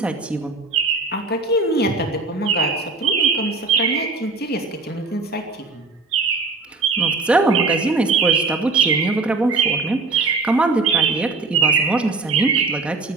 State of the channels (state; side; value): quieter; left; 3.9 dB